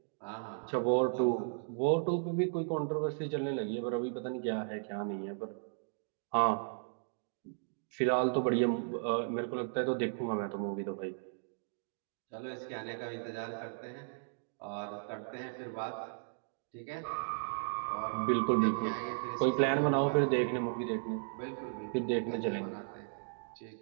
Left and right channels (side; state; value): left; silent; digital silence